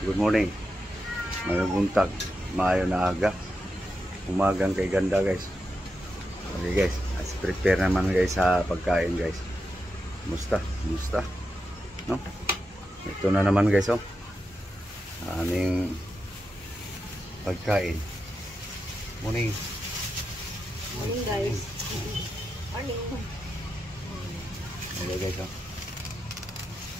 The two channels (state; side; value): normal; both; correlation 0.88